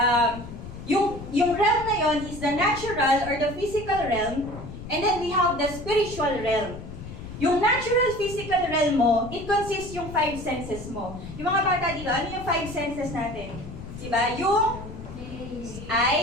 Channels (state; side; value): noise; left; rumble, 11 dB below the sound